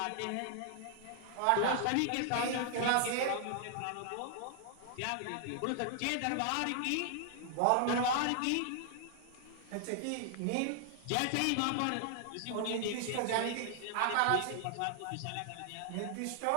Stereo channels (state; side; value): different; both; correlation 0.00